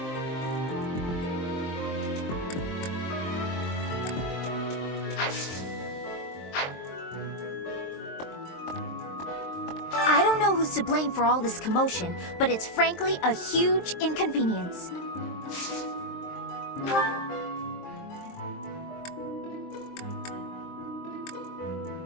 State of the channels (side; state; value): right; late; 23 ms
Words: I don't know who's to blame for all this commotion, but it's frankly a huge inconvenience.